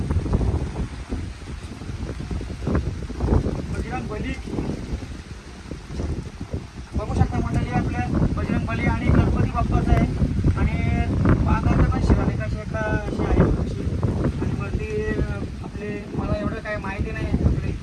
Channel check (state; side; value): identical; both; correlation 1.00